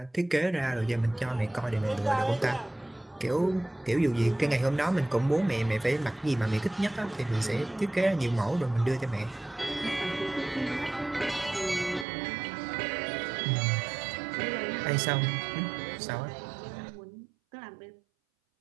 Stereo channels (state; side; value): drops out; left; at 12.1 s